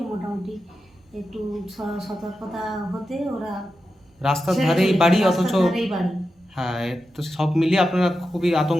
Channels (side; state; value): both; normal; correlation 0.90